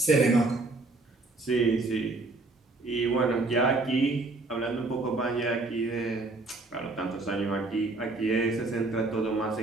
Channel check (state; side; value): quieter; left; 3.3 dB